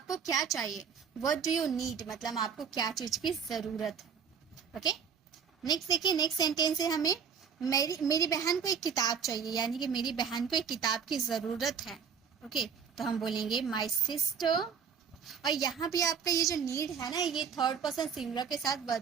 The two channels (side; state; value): left; quieter; 7.0 dB